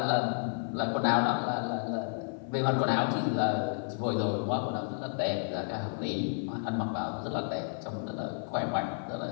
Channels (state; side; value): silent; right; 57 dB below the other